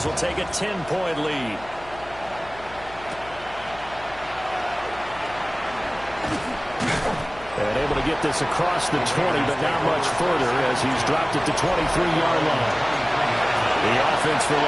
will take a 10-point lead. And able to get this across the 20, but not much further as he's dropped it to 23-yard line. The offense for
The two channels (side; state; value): left; noise; hum, 19 dB below the sound